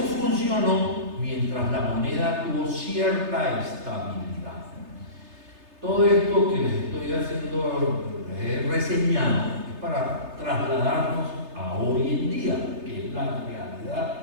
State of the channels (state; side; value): late; left; 3.3 ms